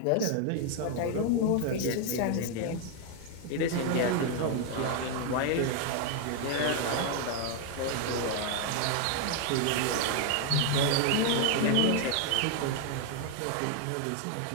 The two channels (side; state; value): both; different; correlation 0.01